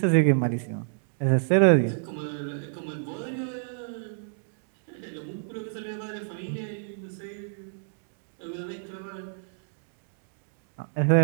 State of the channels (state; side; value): silent; left; digital silence